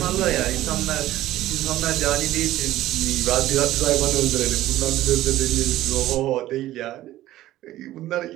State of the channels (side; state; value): left; quieter; 14.9 dB